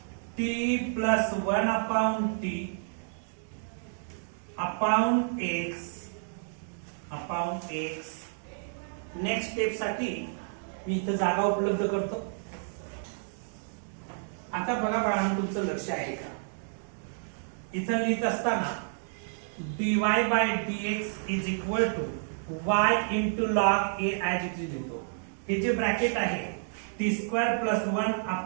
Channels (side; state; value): left; silent; digital silence